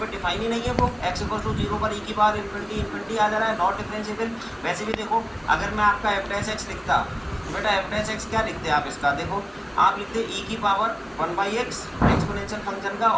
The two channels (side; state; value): both; identical; correlation 1.00